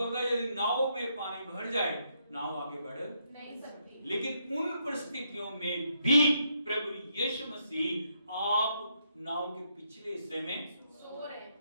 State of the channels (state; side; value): inverted; both; correlation -0.76